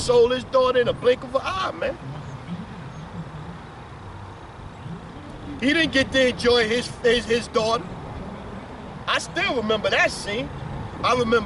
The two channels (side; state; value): both; identical; correlation 1.00